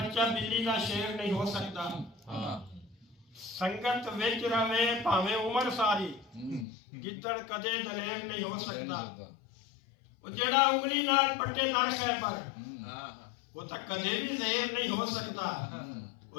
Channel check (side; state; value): right; drops out; at 6.7 s